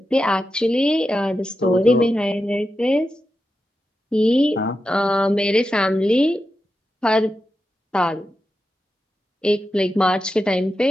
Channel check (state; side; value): normal; both; correlation 0.89